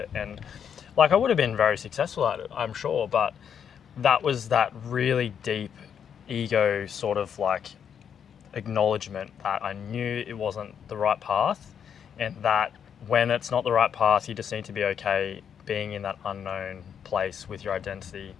And like, I would have been very successful at it, I'm sure, but that was that really deep ego sort of like acknowledgement that I knew it wasn't the right path, and that when it's not the right path, you just need to be okay being in that unknown place with your identity,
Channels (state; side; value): quieter; right; 7.9 dB